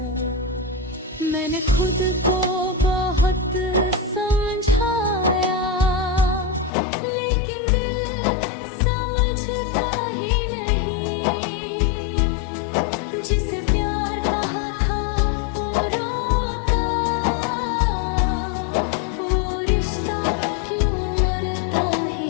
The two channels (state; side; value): drops out; right; at 6.7 s